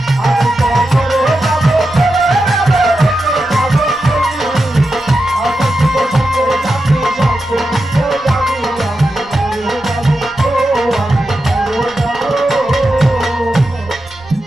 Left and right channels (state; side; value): noise; right; rumble, 24 dB below the sound